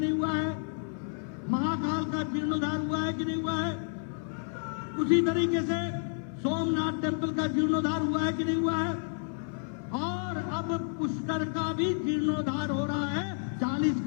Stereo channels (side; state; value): right; silent; 58 dB below the other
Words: हुआ है? महाकाल का जीर्णोद्धार हुआ है कि नहीं हुआ है? उसी तरीके से सोमनाथ टेम्पल का जीर्णोद्धार हुआ है कि नहीं हुआ है? और अब पुष्कर का भी जीर्णोद्धार हो रहा है। 40